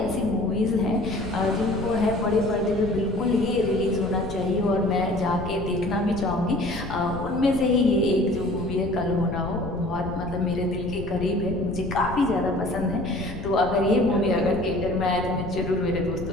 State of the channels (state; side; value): noise; left; rumble, 10 dB below the sound